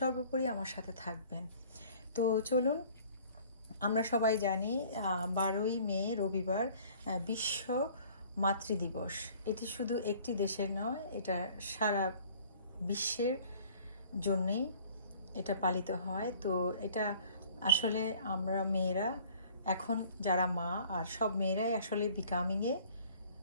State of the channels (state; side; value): inverted; both; correlation -0.52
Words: আমার সাথে থাকবেন। তো চলুন, আমরা সবাই জানি 12ই মে রবিবার বিশ্ব মাতৃদিবস। এটি শুধু একটি দেশের নয়, এটা সারা বিশ্বের জন্যেই এটা পালিত হয়। তো এটা আসলে আমরা মেয়েরা, এখন যারা মা, আর সব মেয়েরাই আসলে বিকামিংয়ে